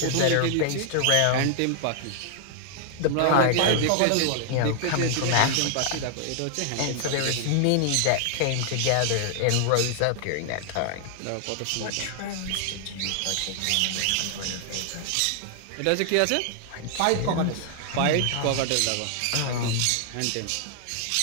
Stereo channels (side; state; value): both; different; correlation 0.00